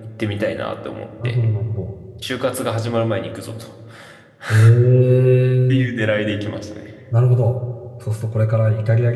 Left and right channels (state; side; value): identical; both; correlation 1.00